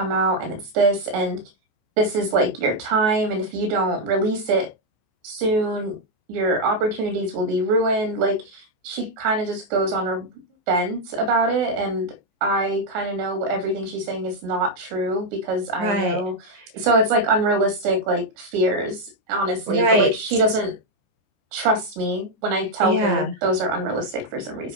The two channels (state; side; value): late; left; 14 ms